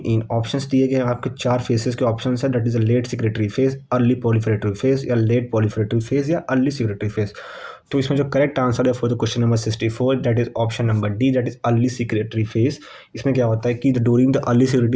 in. Options दिए गए हैं आपके चार फेसेस के ऑप्शंस है, that is a late secretory phase, early proliferative phase या लेट पॉलीफेरेटिव फेज या अर्ली सिक्रेटरी फेज। तो इसमें जो करेक्ट आंसर है for the question number 64 that is option number D, that is early secretory phase. इसमें क्या होता है कि during the early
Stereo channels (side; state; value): both; identical; correlation 1.00